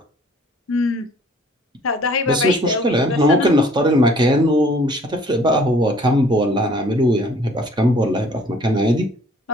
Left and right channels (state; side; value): normal; both; correlation 0.56